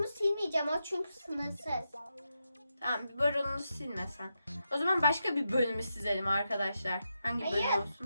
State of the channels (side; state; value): both; inverted; correlation -0.86